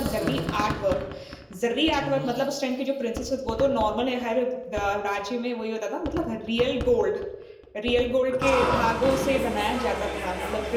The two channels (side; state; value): both; identical; correlation 1.00